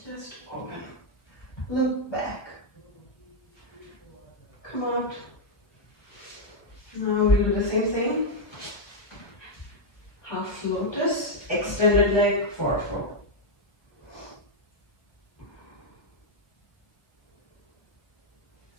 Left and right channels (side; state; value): right; late; 1.4 ms